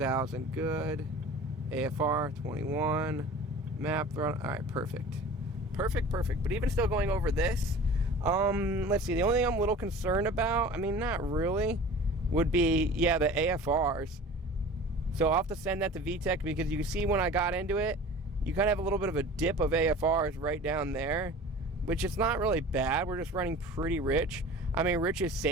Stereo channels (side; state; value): both; normal; correlation 0.40